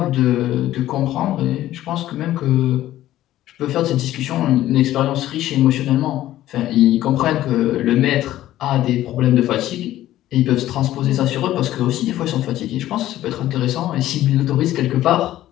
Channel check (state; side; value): quieter; right; 14.0 dB